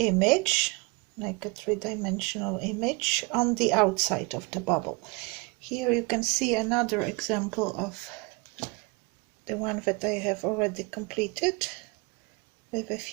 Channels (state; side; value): quieter; left; 28.3 dB